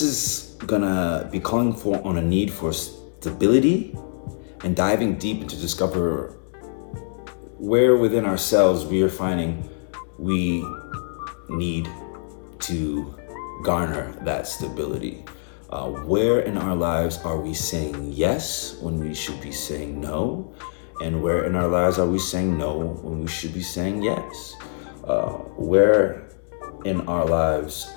is gonna be calling on a need for stability and diving deep to discover where within ourselves we are finding we need to garner that stability. Where in our lives are we saying yes when we should be saying no? And where in our lives are we saying no when we should be saying yes? Where in our lives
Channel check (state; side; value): silent; right; digital silence